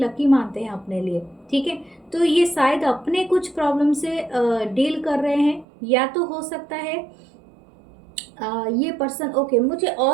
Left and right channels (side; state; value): left; drops out; at 5.7 s